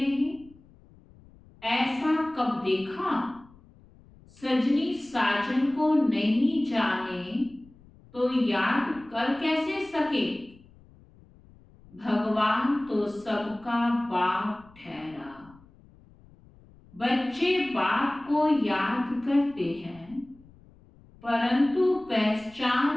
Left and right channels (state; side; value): noise; left; rumble, 26 dB below the sound